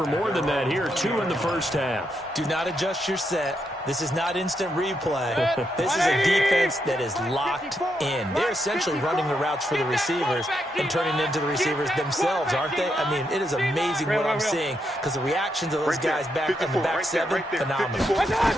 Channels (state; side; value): normal; both; correlation 0.81